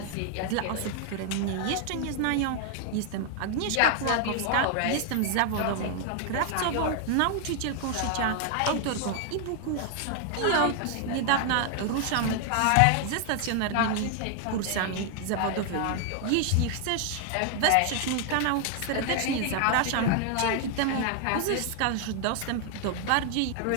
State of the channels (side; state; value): both; different; correlation 0.00